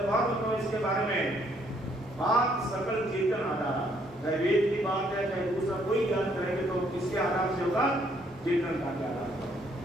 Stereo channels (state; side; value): normal; both; correlation 0.68